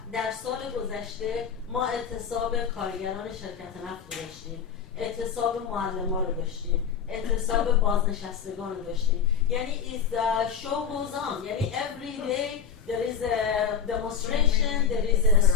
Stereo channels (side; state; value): right; quieter; 7.1 dB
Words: در سال گذشته ما اعتصاب کارگران شرکت نفت رو داشتیم، اعتصاب معلمان رو داشتیم، اعتصاب بازنشستگان رو داشتیم. یعنی is the show goes on. یعنی every day there is a demonstration, there is a